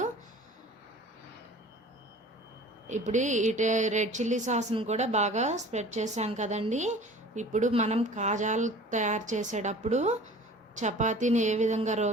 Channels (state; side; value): normal; both; correlation 0.44